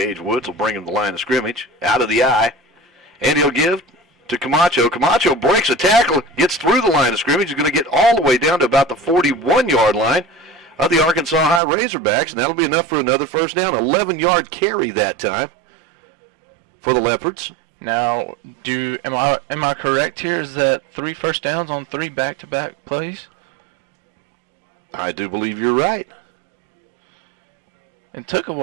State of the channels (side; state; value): left; drops out; at 11.6 s